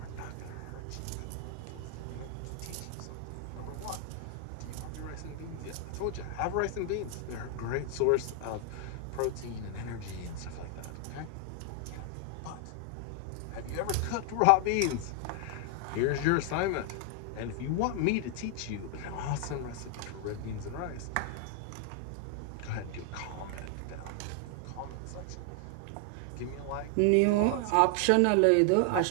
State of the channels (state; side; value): different; both; correlation 0.00